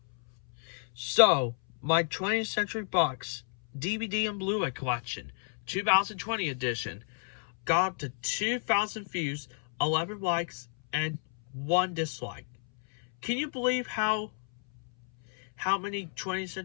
So, my 20th Century Box DVD and Blu-ray collection, 2020 edition, got up to 2,000 views, 11 likes, and 1 dislike. Can you believe how many 20th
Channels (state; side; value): silent; right; 57 dB below the other